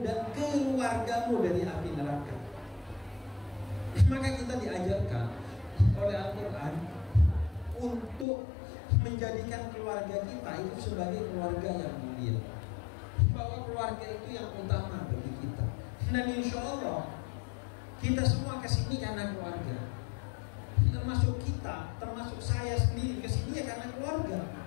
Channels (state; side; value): drops out; right; at 8.2 s